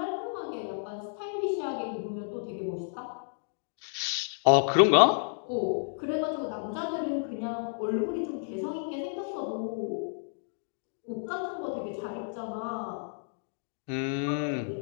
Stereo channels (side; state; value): right; silent; digital silence